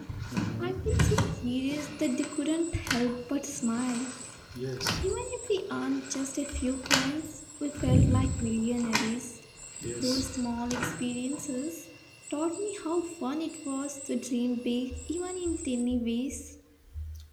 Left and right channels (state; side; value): identical; both; correlation 1.00